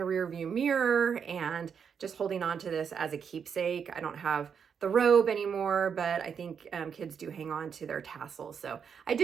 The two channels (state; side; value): quieter; left; 7.0 dB